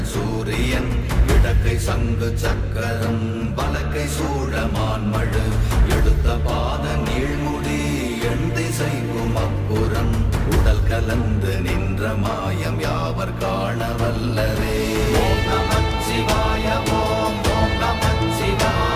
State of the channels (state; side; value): identical; both; correlation 1.00